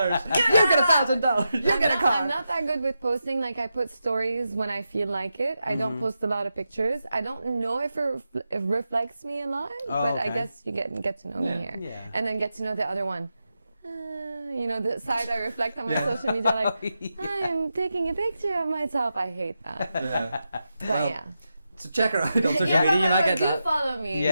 You get $1,000. You get a I'm car. not that good with posting. Like, I put stories when I feel like it. I don't post a lot of pictures. I don't know if it reflects me a lot, but I okay. guess you get to know me here. Yeah. And then get to know the other one. You know, the side I reflect on my social media, like, I'm taking a picture of myself. I hate that. But yeah. So check her out on social Yeah, media. You might get do that. follow me.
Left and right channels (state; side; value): inverted; both; correlation -0.89